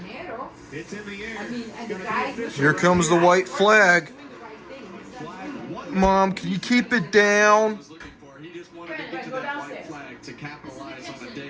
It's in the air. Here comes the white flag. Mom, can you keep it down? He just wanted to get to that white flag to capitalize on a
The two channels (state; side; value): identical; both; correlation 1.00